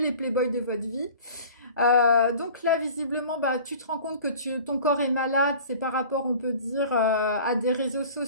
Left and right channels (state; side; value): inverted; both; correlation -0.43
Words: playboys de votre vie. Donc là, visiblement, bah, tu te rends compte que ton corps est malade. C'est par rapport, on peut dire, à des réseaux